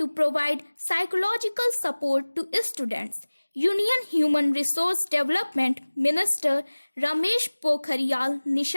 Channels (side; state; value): both; inverted; correlation -1.00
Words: provide psychological support to students. Union Human Resource Development Minister Ramesh Pokhariyal